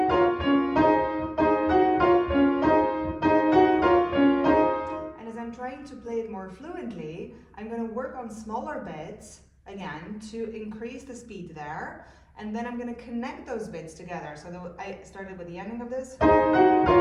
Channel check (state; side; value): identical; both; correlation 1.00